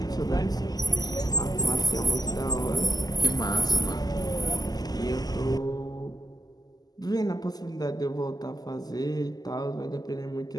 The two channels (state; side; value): late; right; 0.19 ms